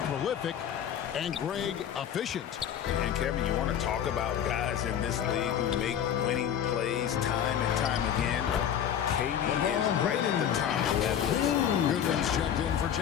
prolific and Greg efficient. And Kevin, you want to talk about guys in this league who make winning plays time and time again? KD is right at the top of that list. Goodwin's checked in for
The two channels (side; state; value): right; quieter; 9.4 dB